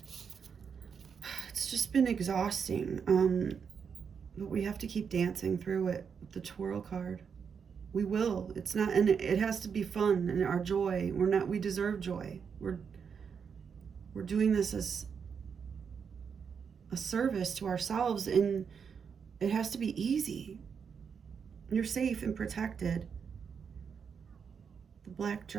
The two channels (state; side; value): quieter; left; 6.5 dB